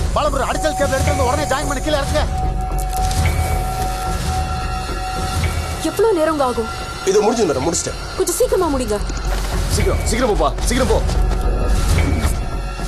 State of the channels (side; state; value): both; identical; correlation 1.00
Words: பாலமுருகன் அடிச்சல் கேபிள் எடுத்து உடனே ஜாயின் பண்ணி கீழே இறக்குங்க. எவ்வளவு நேரம் ஆகும்? இது முடிஞ்சது மேடம், முடிச்சிட்டேன். கொஞ்சம் சீக்கிரமா முடிங்க. சீக்கிரம் போப்பா, சீக்கிரம் போ.